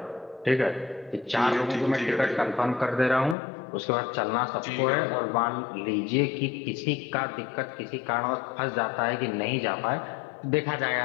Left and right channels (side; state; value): right; drops out; at 3.4 s